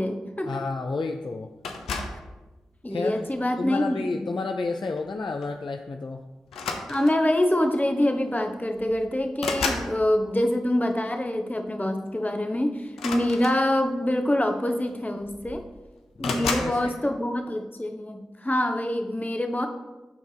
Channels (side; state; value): both; normal; correlation 0.93